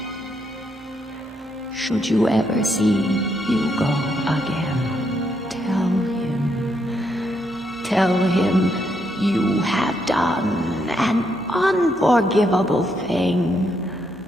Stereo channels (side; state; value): both; normal; correlation 0.77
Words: Should you ever see Hugo again, tell him you have done an unforgivable thing.